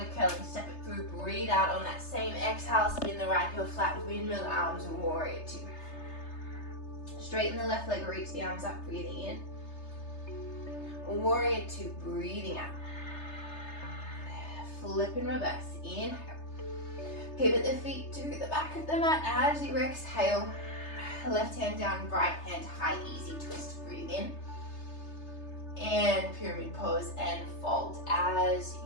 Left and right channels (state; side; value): late; right; 3.3 ms